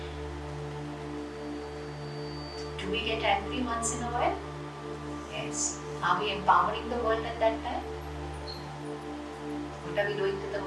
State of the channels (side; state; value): both; identical; correlation 1.00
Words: Do we get angry once in a while? Yes. Are we empowering the world at that time? What are we doing to the